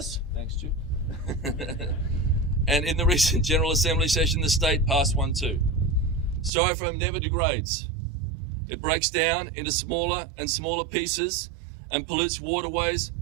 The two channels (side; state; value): left; drops out; at 6.5 s